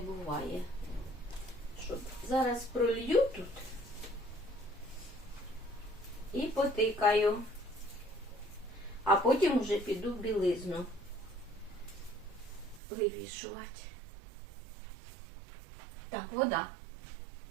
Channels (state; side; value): drops out; left; at 12.8 s